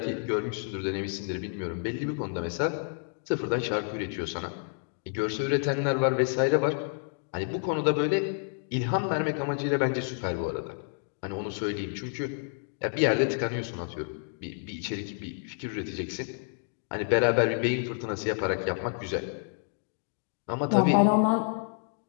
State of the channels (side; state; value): right; silent; 57 dB below the other